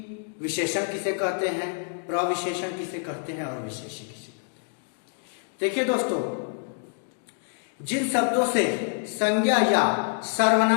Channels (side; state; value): right; silent; 60 dB below the other